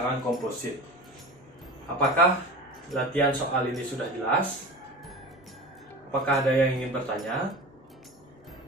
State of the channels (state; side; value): normal; both; correlation 0.32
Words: komposit. Apakah latihan soal ini sudah jelas? Apakah ada yang ingin bertanya?